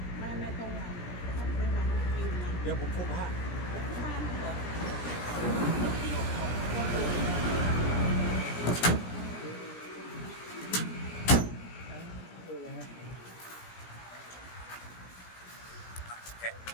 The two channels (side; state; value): right; late; 17 ms